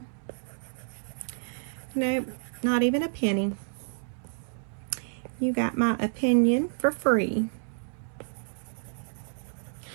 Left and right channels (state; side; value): silent; left; 58 dB below the other